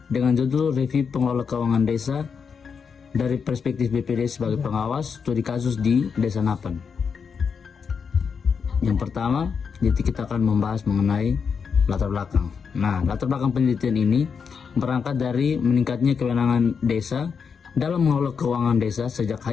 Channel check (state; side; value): quieter; right; 6.1 dB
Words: dengan judul Review Pengelola Keuangan Desa dari perspektif BPD sebagai pengawas studi kasus di Desa Napan. Yang pertama, kita akan membahas mengenai latar belakang. Nah, latar belakang penelitian ini berangkat dari meningkatnya kewenangan desa dalam mengelola keuangan desa sejak